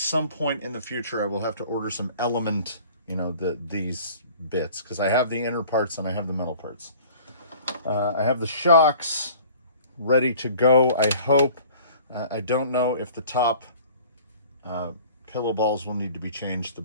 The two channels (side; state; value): both; inverted; correlation -0.48